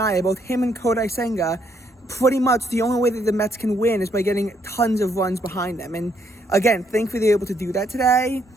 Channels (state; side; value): normal; both; correlation 0.72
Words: Both him and Kodai Senga, pretty much the only way that the Mets can win is by getting tons of runs behind them. And again, thankfully they're able to do that today.